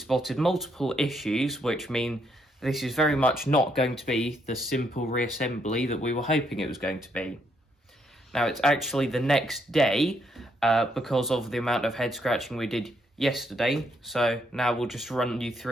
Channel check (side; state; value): both; normal; correlation 0.74